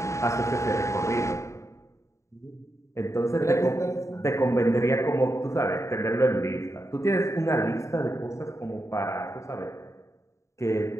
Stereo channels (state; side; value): late; right; 0.14 ms